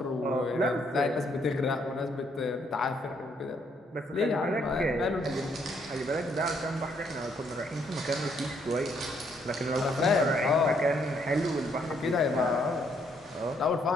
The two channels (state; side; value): normal; both; correlation 0.71